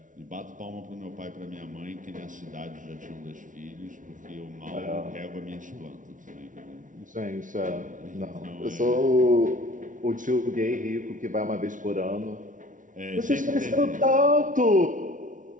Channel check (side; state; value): left; late; 0.38 ms